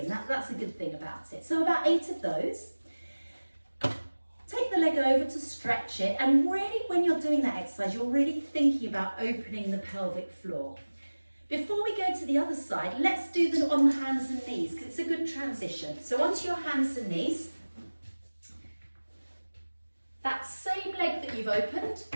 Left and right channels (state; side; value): inverted; both; correlation -1.00